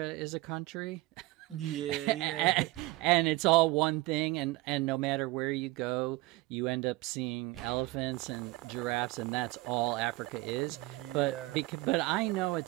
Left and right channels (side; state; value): left; quieter; 20.0 dB